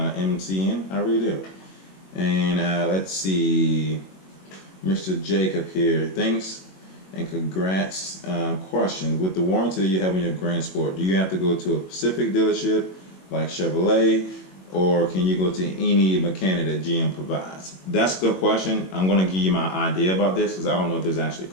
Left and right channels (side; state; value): right; late; 21 ms